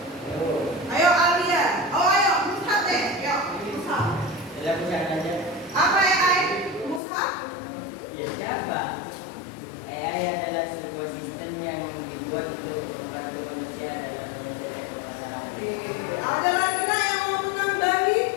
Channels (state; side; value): drops out; right; at 7.0 s